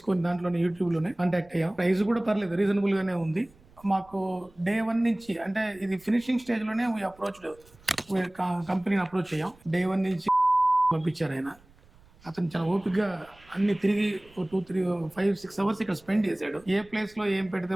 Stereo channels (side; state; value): right; noise; rumble, 28 dB below the sound